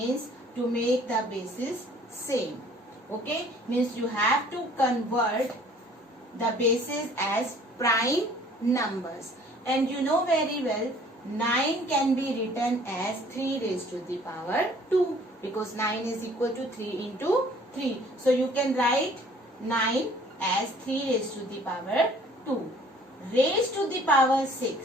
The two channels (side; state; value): both; normal; correlation 0.55